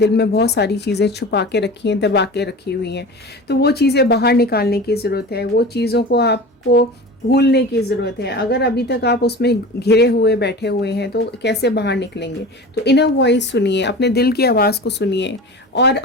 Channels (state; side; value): normal; both; correlation 0.34